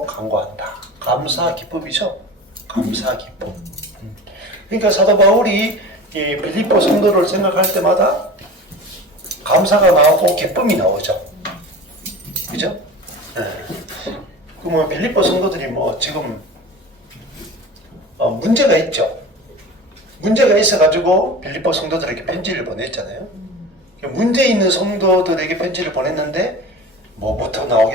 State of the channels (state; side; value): normal; both; correlation 0.35